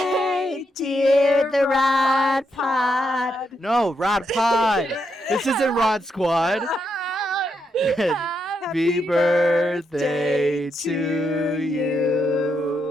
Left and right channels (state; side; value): normal; both; correlation 0.81